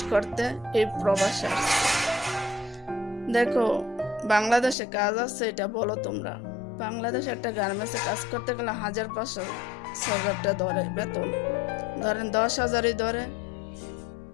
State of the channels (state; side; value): drops out; right; at 4.8 s